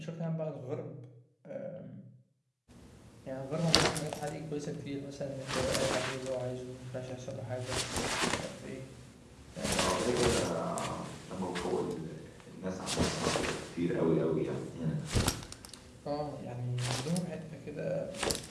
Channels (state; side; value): identical; both; correlation 1.00